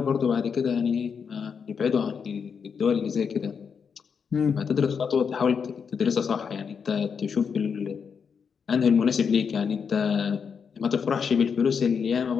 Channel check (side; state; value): right; quieter; 6.4 dB